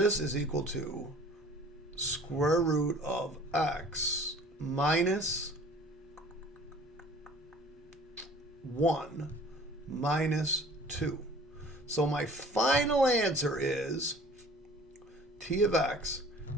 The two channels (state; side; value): normal; both; correlation 0.48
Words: is equal to square root of x minus 1 minus 2. So my final answer is t of x